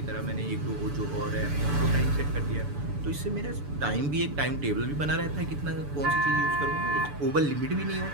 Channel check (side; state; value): left; late; 6.9 ms